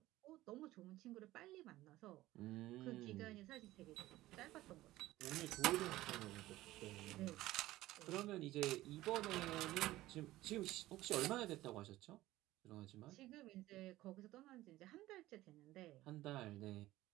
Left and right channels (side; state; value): left; quieter; 16.5 dB